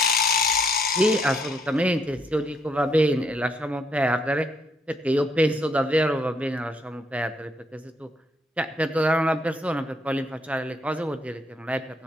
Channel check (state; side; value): normal; both; correlation 0.72